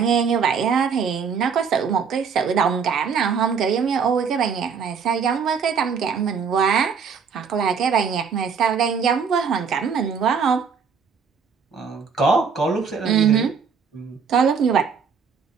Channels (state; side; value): quieter; left; 6.1 dB